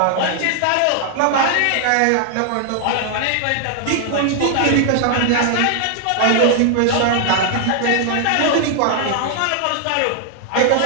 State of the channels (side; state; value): both; different; correlation 0.00